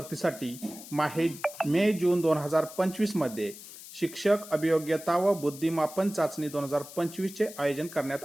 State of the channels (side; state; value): left; noise; hiss, 15 dB below the sound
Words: मे जून 2025 मध्ये शिक्षक अभियोग्यता व बुद्धिमापन चाचणी 2025 चे आयोजन करण्यात